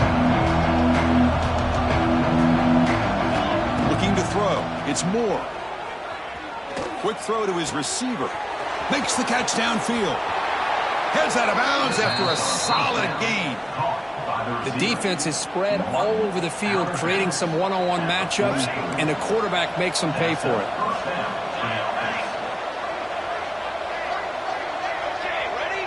Looking to throw. It's Moore. Quick throw to his receiver. Makes the catch downfield. Heads out of bounds after a solid gain. The defense is spread all over the field, creating some one-on-one matchups, and the quarterback makes them pay for it.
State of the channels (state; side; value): identical; both; correlation 1.00